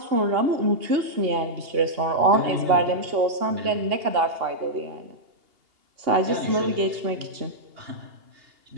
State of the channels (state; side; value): late; left; 2.8 ms